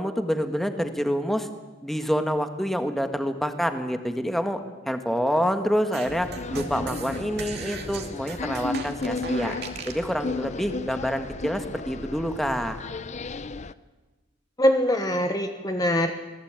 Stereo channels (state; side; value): normal; both; correlation 0.81